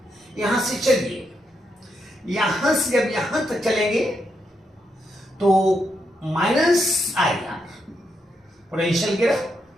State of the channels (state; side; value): normal; both; correlation 0.81